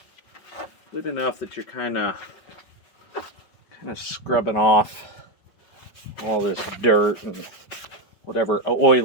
good enough that you're kind of scrubbing off all this dirt and whatever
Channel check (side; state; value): right; late; 5.4 ms